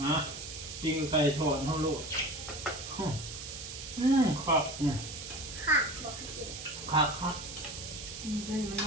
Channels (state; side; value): noise; right; hiss, 9 dB below the sound